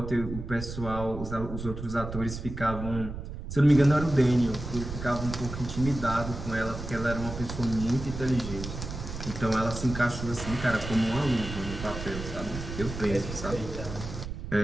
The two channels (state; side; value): noise; right; rumble, 8 dB below the sound